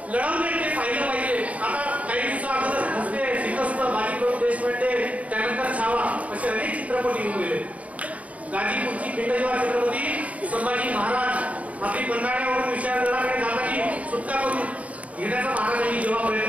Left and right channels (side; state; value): left; late; 0.068 ms